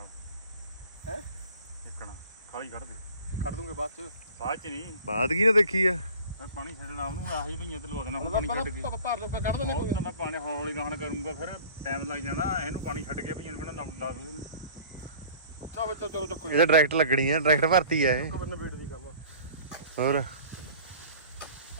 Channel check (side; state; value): both; inverted; correlation -0.46